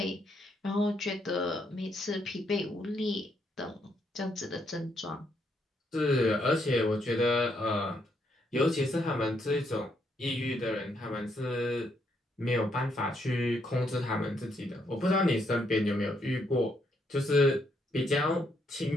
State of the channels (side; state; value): both; normal; correlation 0.75